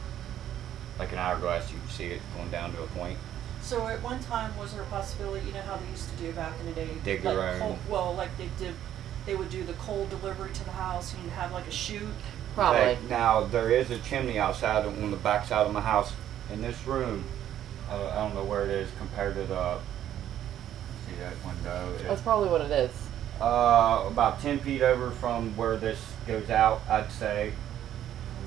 an hourglass. You could see it going down to a point. So at one time, was there a possibility, you know how they used to do back in the day? Dig like their own. like they would do the coal delivery to the house, and you'd have like a chute. Probably. Okay, now there is a chimney outside on the back side of my house. In this room, I don't know where it is compared to the. See that window? That's probably what it is. About 10 feet over from where this goes out, I'd say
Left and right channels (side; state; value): left; quieter; 11.2 dB